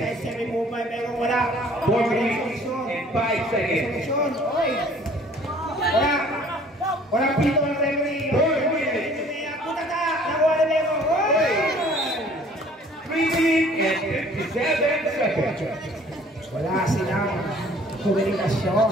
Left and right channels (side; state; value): both; normal; correlation 0.54